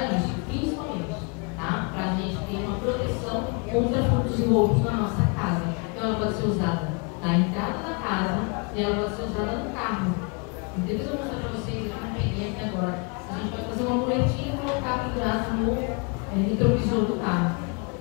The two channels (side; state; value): right; quieter; 32.8 dB